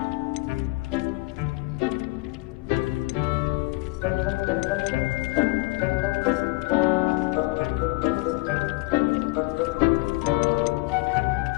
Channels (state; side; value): quieter; right; 22.9 dB